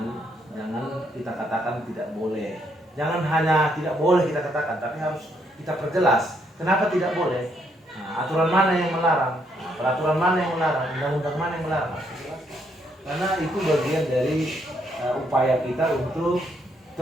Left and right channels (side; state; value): both; normal; correlation 0.73